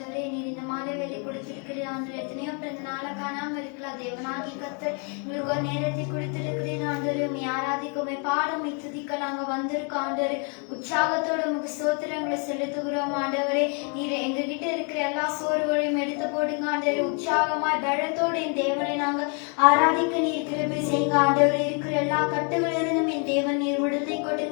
நீர் இந்த மாலை வேலை கொடுத்திருக்கிறீர் ஆண்டவரே. எத்தனையோ பிறந்த நாளை காணாமல் இருக்கலாம். தேவனாகி கர்த்தர் எங்களுக்கு ஒரு நேரத்தை கொடுத்திருக்கிறீர் ஆண்டவரே. உண்மை ஆராதிக்குமே பாடம் துதிக்க நாங்க வந்திருக்கோம் ஆண்டவரே. உற்சாகத்தோட உங்களுக்கு ஸ்தோத்திரங்களை செலுத்துகிறோம் ஆண்டவரே. நீர் எங்ககிட்ட இருக்கிற எல்லா சோர்வுகளையும் எடுத்து போடுங்க ஆண்டவரே. உற்சாகமாய் பலத்தோடு என் தேவனை நாங்க ஆராதிக்க நீர் கிருபை செய்யுங்க ஆண்டவரே. இருக்கிற எல்லா கட்டுகளிலிருந்தும் என் தேவன் நீர் விடுதலை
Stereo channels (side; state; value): right; quieter; 38.0 dB